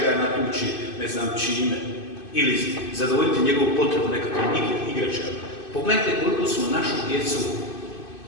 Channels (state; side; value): late; right; 2.5 ms